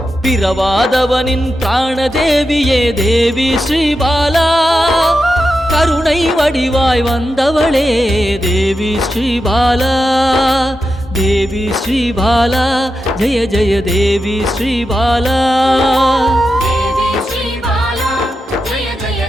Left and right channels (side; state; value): both; normal; correlation 0.89